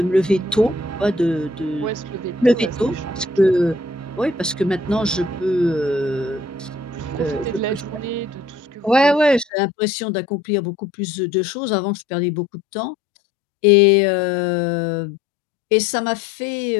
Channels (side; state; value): right; drops out; at 9.5 s